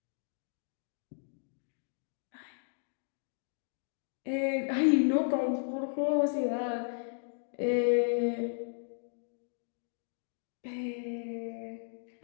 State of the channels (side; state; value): right; silent; digital silence